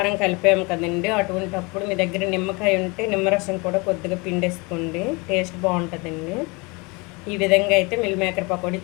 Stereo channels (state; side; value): quieter; right; 27.9 dB